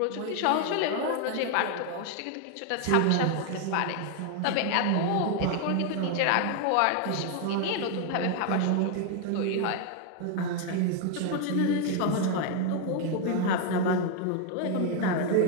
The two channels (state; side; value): different; both; correlation 0.00